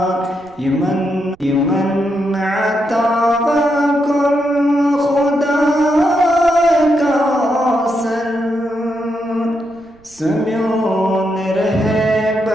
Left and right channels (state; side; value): noise; right; rumble, 30 dB below the sound